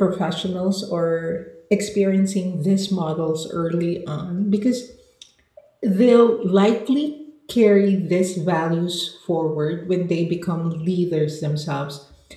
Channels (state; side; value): identical; both; correlation 1.00